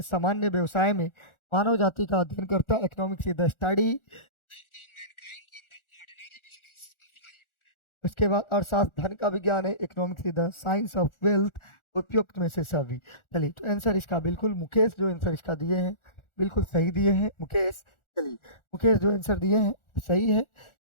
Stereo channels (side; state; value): right; late; 1.4 ms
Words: सामान्य व्यवसाय में मानव जाति का अध्ययन करता है। Economics is the study. उसके बाद अर्थशास्त्र धन का विज्ञान है। Economics is the science of wealth. उपयुक्त में से सभी। चलिए, तो आंसर इसका बिल्कुल मुकेश जो आंसर इसका दिए हैं बिल्कुल सही दिए हैं मुकेश। चलिए, मुकेश जो आंसर दिए हैं सही है।